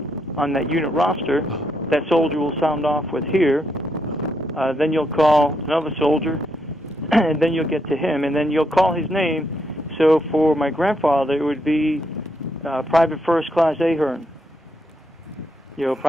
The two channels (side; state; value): both; normal; correlation 0.78